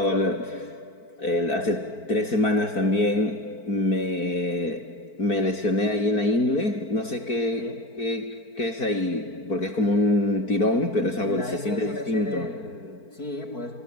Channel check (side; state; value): right; late; 4.5 ms